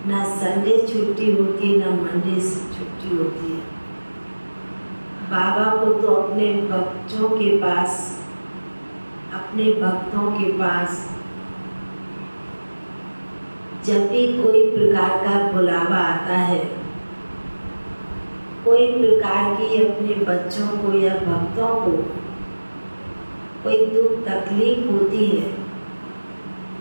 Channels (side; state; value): both; inverted; correlation -1.00